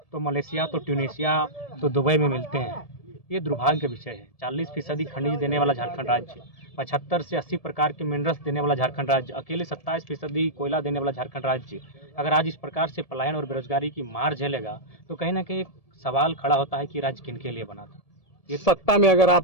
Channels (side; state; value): right; late; 1.7 ms